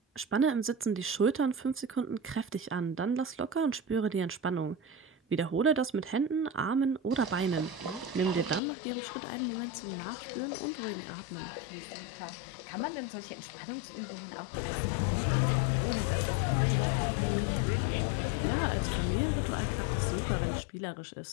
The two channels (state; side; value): drops out; right; at 8.6 s